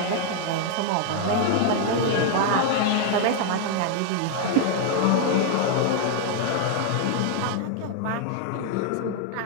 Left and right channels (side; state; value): both; different; correlation 0.00